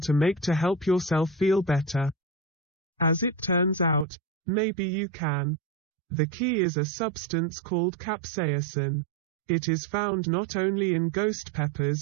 make to help yourself feel better. As it turns out, maybe you can. The key is a substance called capsaicin. It is found not only in ghost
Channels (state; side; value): drops out; left; at 4.0 s